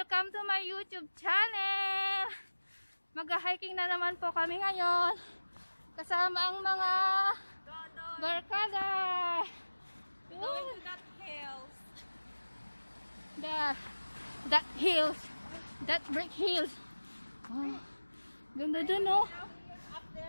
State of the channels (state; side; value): inverted; both; correlation -1.00